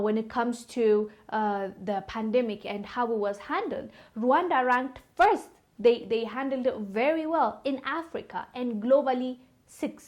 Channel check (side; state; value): both; identical; correlation 1.00